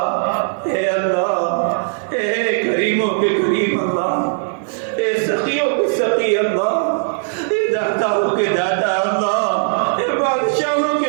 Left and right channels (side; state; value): left; silent; 67 dB below the other